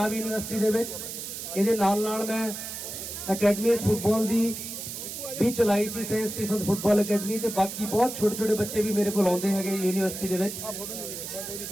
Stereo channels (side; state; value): right; noise; hiss, 8 dB below the sound